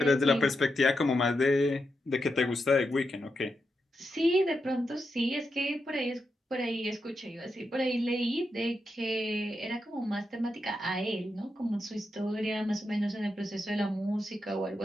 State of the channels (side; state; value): both; normal; correlation 0.86